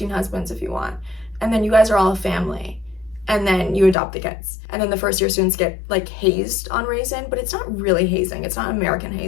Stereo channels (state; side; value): drops out; right; at 4.0 s